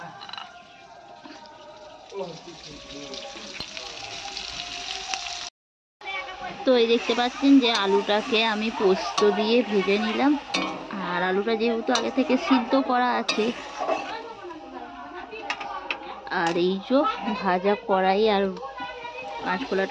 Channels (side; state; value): both; identical; correlation 1.00